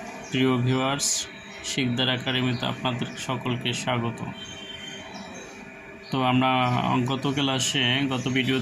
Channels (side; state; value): both; identical; correlation 1.00